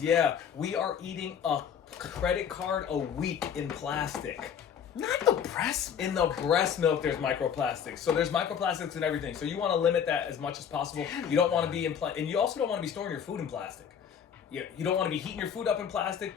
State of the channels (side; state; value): right; quieter; 8.0 dB